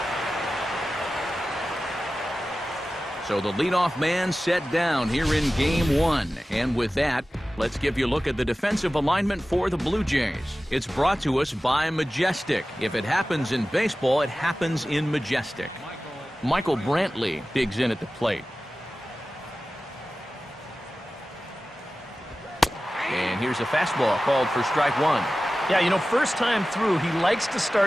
So the leadoff man set down here in game one. And with that, let's give you a look at the defensive alignment for the Blue Jays. It's brought to us by Majestic. If it happens in baseball, it happens in Majestic. Michael Brantley digs in at the plate. And here's a fastball called for strike one. Yeah, you know, first time through, he likes to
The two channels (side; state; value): both; normal; correlation 0.95